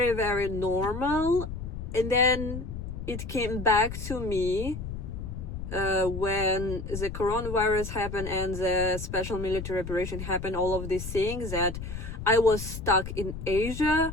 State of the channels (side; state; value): left; noise; rumble, 7 dB below the sound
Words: very normal, and then it came back to me when the coronavirus happened and the special military operation happened. All of these things, that I was stuck in Asia.